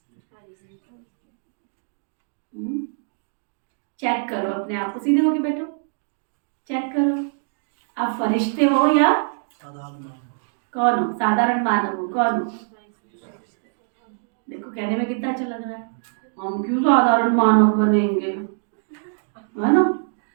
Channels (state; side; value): silent; left; digital silence